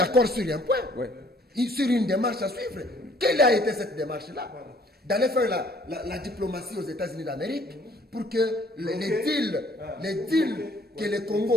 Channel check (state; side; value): normal; both; correlation 0.59